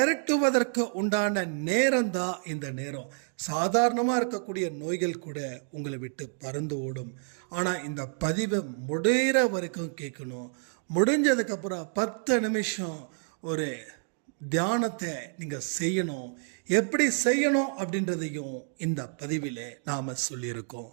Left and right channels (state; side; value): silent; left; 58 dB below the other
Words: உண்டான நேரம் தான் இந்த நேரம். சாதாரணமாக இருக்கக்கூடிய நோய்கள் கூட உங்களை விட்டு பறந்து ஓடும். ஆனால் இந்த பதிவை முடிகிற வரைக்கும் கேட்கணும். முடிஞ்சதுக்கப்புறம் 10 நிமிஷம் ஒரு தியானத்தை நீங்கள் செய்யணும். எப்படி செய்யணும் அப்படின்றதையும் இந்த பதிவில் நாம்